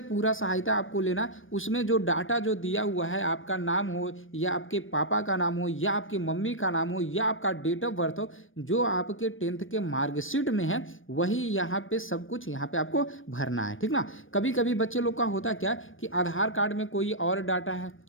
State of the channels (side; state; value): right; late; 0.58 ms